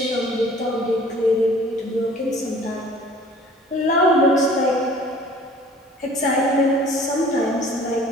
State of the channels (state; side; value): normal; both; correlation 0.50